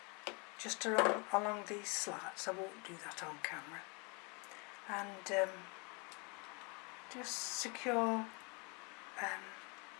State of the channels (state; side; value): quieter; right; 31.7 dB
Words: just along these slats. I won't do that on camera. And just secure